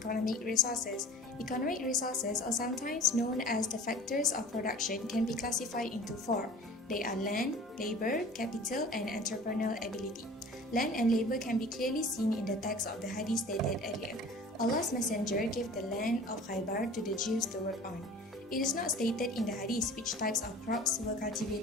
resources. Economic resources, or sometimes known as the factors of production, can be classified into four. They are land, labor, capital, and entrepreneurial ability. Land and labor can be clearly seen in the text of the hadith stated earlier. Allah's Messenger gave the land of Khaybar to the Jews to work on. It is not stated in the hadith which types of crops were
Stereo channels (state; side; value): normal; both; correlation 0.43